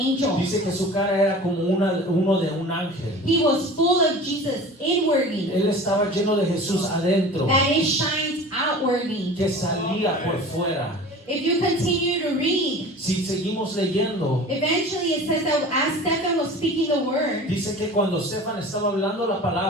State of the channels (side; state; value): both; normal; correlation 0.39